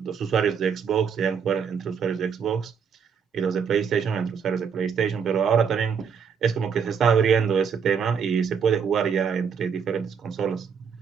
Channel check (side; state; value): left; quieter; 6.8 dB